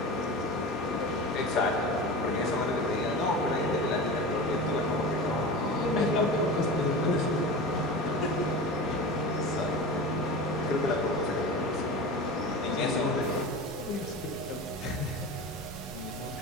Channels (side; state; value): both; normal; correlation 0.30